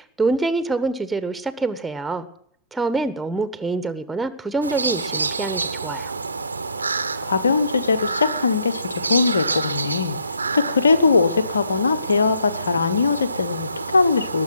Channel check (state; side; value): inverted; both; correlation -0.49